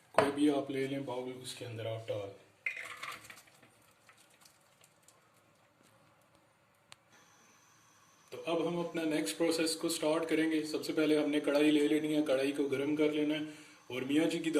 कोई भी आप ले लें बाउल, उसके अंदर आप डाल। तो अब हम अपना नेक्स्ट प्रोसेस को स्टार्ट करेंगे। सबसे पहले हमने कढ़ाई ले लेनी है, कढ़ाई को गर्म कर लेना है। और मियाँ जी की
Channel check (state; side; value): identical; both; correlation 1.00